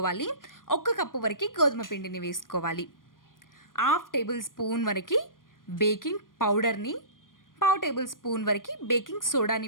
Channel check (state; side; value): late; right; 0.90 ms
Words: 1 కప్పు వరకు గోధుమ పిండిని వేసుకోవాలి. 1/2 టేబుల్ స్పూన్ వరకు బేకింగ్ పౌడర్ని, 1/2 టేబుల్ స్పూన్ వరకు బేకింగ్